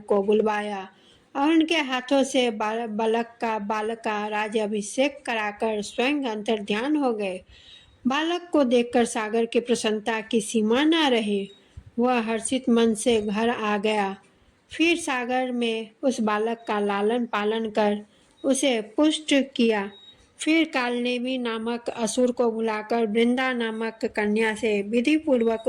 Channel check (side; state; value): both; identical; correlation 1.00